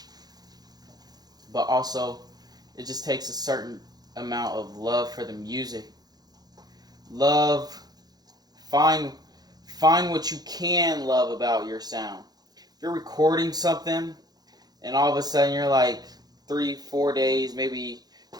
But also, it just takes a certain amount of love for the music. Love, find what you can love about your sound. If you're recording something and all of a sudden you're like 3-4 days, maybe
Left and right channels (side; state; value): left; late; 0.19 ms